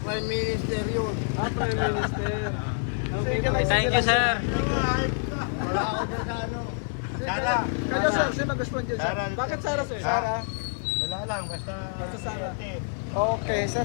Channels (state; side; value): silent; right; digital silence